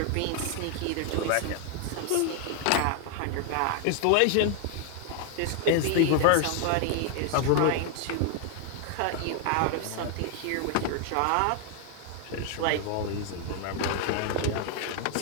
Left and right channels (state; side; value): different; both; correlation 0.00